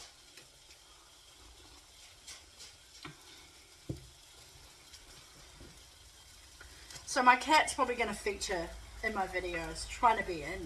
So my cat's probably going to feature in my videos, trying to be in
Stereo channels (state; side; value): identical; both; correlation 1.00